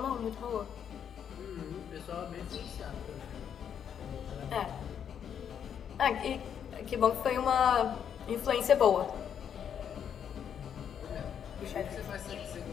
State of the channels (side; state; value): right; quieter; 8.3 dB